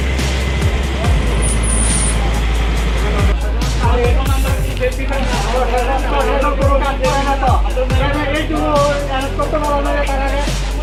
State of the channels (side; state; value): both; identical; correlation 1.00